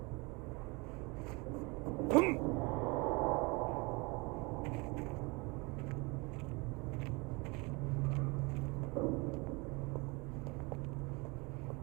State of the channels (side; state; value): left; quieter; 27.5 dB